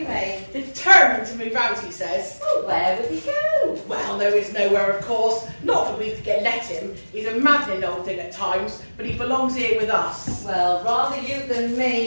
me. Determined to move out, he says. Oh, where would he go? Well, there is nowhere, of course. Not that we could let him. He's a maddening old thing at times, but he belongs here with us. Well, rather you than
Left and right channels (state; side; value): inverted; both; correlation -1.00